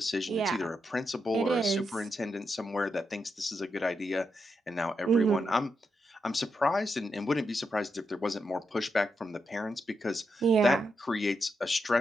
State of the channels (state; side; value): normal; both; correlation 0.84